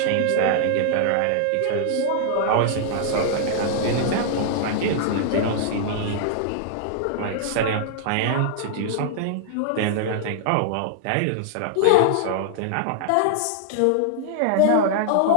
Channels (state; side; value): different; both; correlation -0.01